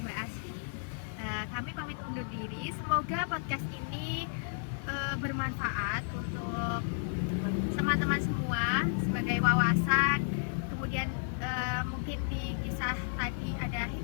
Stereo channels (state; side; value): silent; right; 56 dB below the other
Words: Mbak Asfi, kami pamit undur diri. Semoga podcast ini bermanfaat untuk teman-teman semua sebagai wawasan. Kemudian mungkin di kisah tadi ada